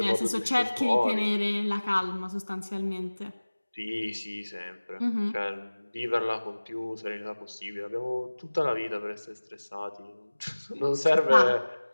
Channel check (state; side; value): inverted; both; correlation -1.00